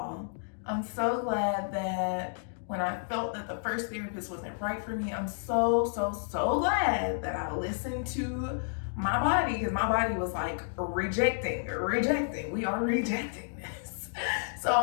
I'm so glad that when I felt that the first therapist wasn't right for me, I'm so glad that I listened to my body, because my body was like rejecting. We are rejecting this. So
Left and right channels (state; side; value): silent; right; digital silence